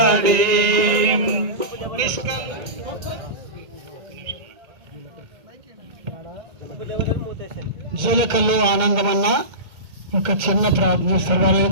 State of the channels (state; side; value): late; left; 1.9 ms